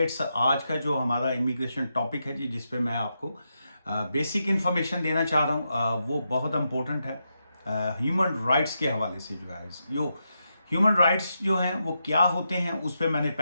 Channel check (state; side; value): inverted; both; correlation -0.85